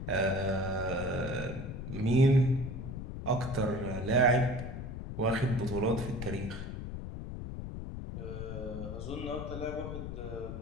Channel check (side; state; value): left; noise; rumble, 7 dB below the sound